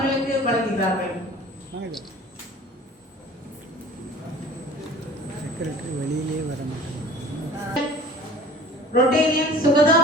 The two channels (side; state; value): both; normal; correlation 0.45